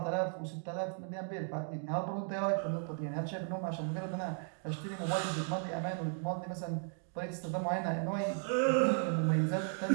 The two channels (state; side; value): silent; left; 54 dB below the other